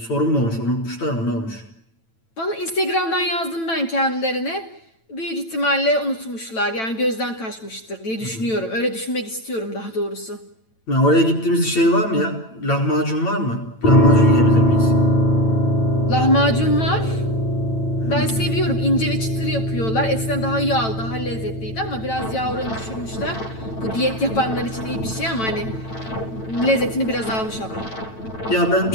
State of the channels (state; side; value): late; right; 9.0 ms